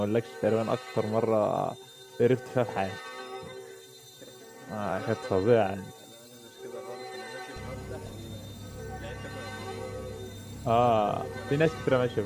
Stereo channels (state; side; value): identical; both; correlation 1.00